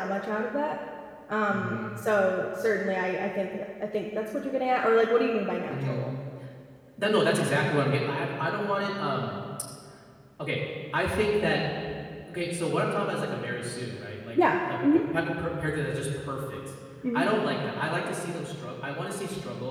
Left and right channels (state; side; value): identical; both; correlation 1.00